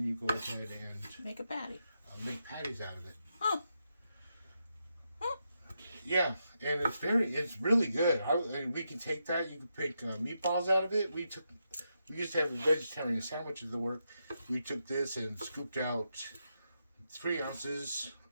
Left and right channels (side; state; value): both; inverted; correlation -0.84